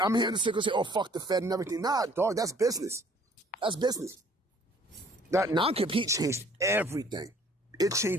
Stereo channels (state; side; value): normal; both; correlation 0.57